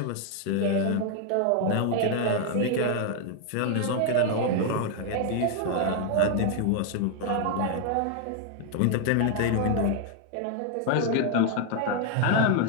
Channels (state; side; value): different; both; correlation 0.00